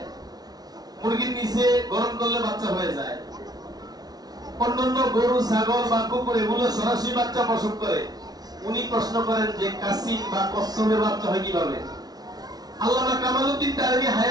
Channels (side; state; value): left; late; 0.19 ms